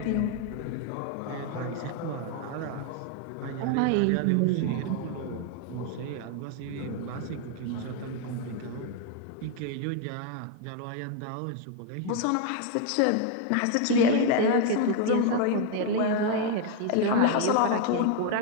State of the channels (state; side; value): different; both; correlation 0.01